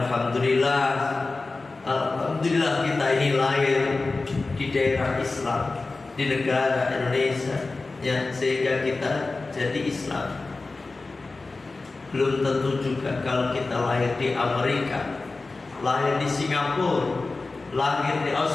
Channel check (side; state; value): right; quieter; 3.6 dB